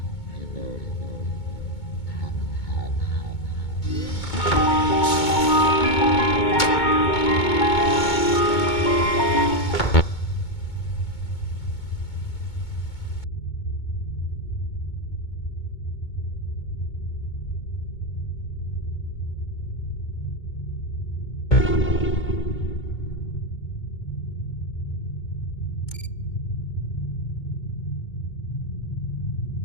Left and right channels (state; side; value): late; right; 2.2 ms